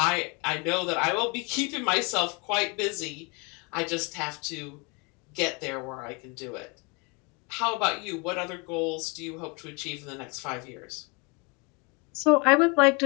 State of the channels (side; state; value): right; quieter; 30.8 dB